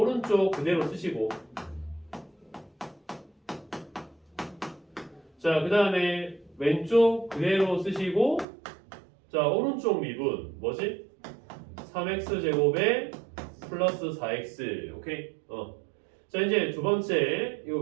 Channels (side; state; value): left; drops out; at 8.5 s